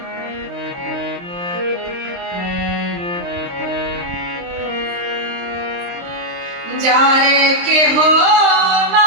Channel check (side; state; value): left; late; 23 ms